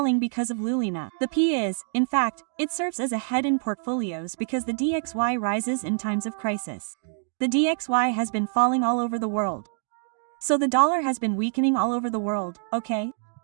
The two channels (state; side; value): silent; left; digital silence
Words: because of Lulina. The P is, in fact, it serves as a head in portfolios because the DXY rises in times of crisis. The DXY has been falling all over the world. So the dollar has been weakening all over the world, okay?